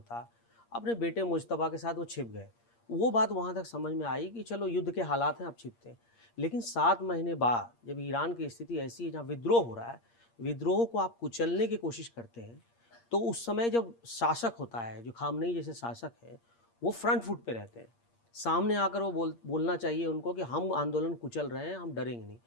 अपने बेटे मुज्तबा के साथ वो छिप गए। वो बात वहाँ तक समझ में आई कि चलो युद्ध के हालात हैं, अब छिपते हैं। लेकिन 7 महीने बाद जब ईरान की स्थिति ऐसी है जहाँ विद्रोह हो रहा है, विद्रोह को आप कुचलने की कोशिश करते हैं, तो उस समय जब शासक होता है, जो खामनेई जैसे शासक है, वो फ्रंट फुट पे रहते हैं। सामने आकर वो बोलना चाहिए उनको कि हम आंदोलन कुचल रहे हैं, हम डरेंगे नहीं।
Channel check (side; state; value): right; late; 8.6 ms